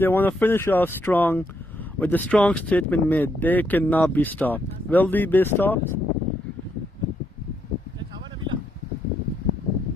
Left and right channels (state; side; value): normal; both; correlation 0.76